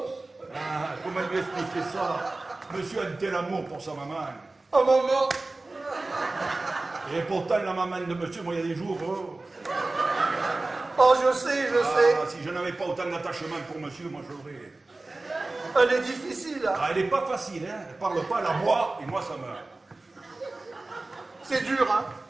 Ah, comment lui expliquer ça? Monsieur a un tel amour pour sa maman. Oh, maman! Et pourtant, la maman de monsieur, moi, il y a des jours... Oh, je sais. Si je n'avais pas autant d'attachement pour monsieur, moi, je l'aurais... Elle est difficile, hein? Ah, elle n'est pas facile, hein. Elle parle pas, elle aboie, et moi, ça me... C'est dur, hein?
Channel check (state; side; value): quieter; left; 3.1 dB